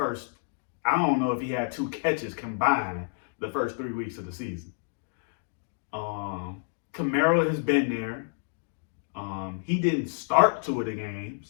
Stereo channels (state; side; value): silent; right; digital silence